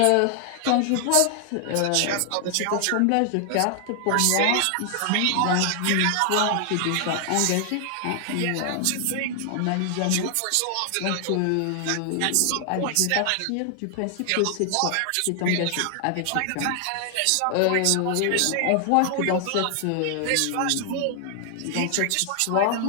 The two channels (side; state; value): both; different; correlation 0.00